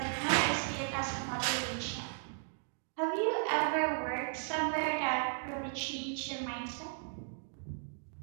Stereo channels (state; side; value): silent; left; digital silence